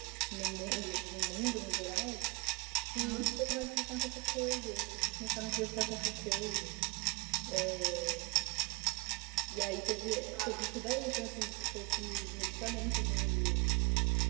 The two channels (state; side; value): quieter; left; 27.2 dB